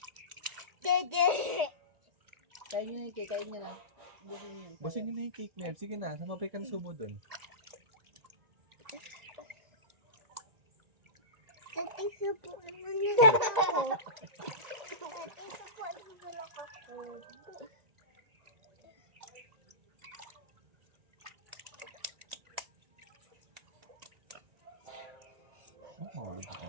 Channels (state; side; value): late; left; 1.9 ms